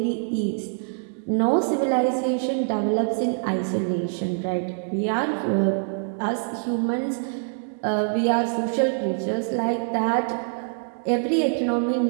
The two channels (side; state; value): left; silent; digital silence